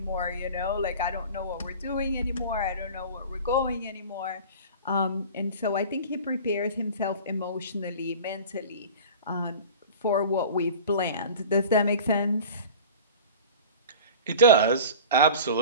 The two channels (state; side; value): inverted; both; correlation -0.38